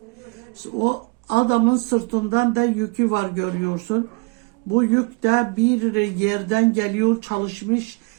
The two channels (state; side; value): quieter; left; 30.1 dB